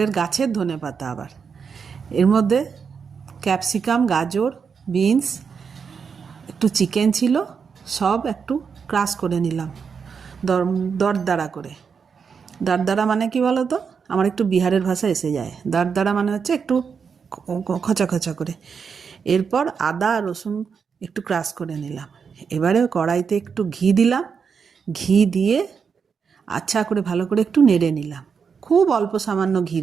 গাছের ধনেপাতা। আবার এর মধ্যে ক্যাপসিকাম, গাজর, বিনস, একটু চিকেন ছিল, সব একটু ক্রাশ করে নিলাম দরদরা করে। দারদারা মানে কি বলো তো? আমার একটু বিহারের ভাষা এসে যায়। দারদারা মানে হচ্ছে একটু খচা খচা করে। এরপর আদা রসুন একটু ক্রাশ করে নিলাম। এবারে কড়াইতে একটু ঘি দিলাম। ঘি দিয়ে আচ্ছা করে ভালো করে একটু নেড়ে নিলাম। খুব অল্প সামান্য ঘি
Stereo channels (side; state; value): left; quieter; 6.1 dB